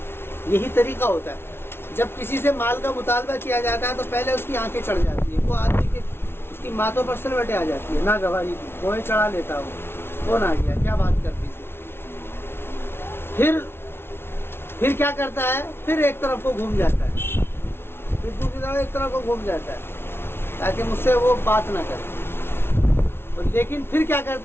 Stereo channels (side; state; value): right; late; 0.12 ms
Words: یہی طریقہ ہوتا ہے، جب کسی سے مال کا مطالبہ کیا جاتا ہے تو پہلے اس کی آنکھیں چڑھ جاتی ہے، وہ آدمی کے اس کی ماتھوں پر سلوٹیں آ جاتی ہے، نہ گواہی کی، کوئی چڑھا لیتا ہو، کون آ گیا، کیا بات کرتی تھی۔ پھر کیا کرتا ہے؟ پھر ایک طرف کو گھوم جاتا ہے، پھر دوسری طرف ایک طرف کو گھوم جاتا ہے تاکہ مجھ سے وہ بات نہ کرے، لیکن پھر کیا